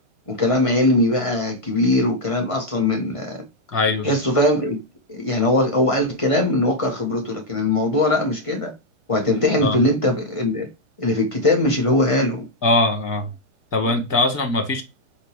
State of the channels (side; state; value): right; late; 1.9 ms